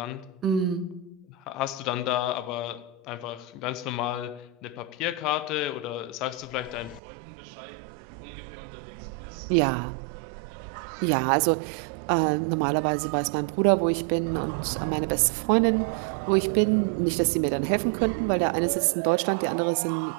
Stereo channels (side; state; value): left; drops out; at 7.0 s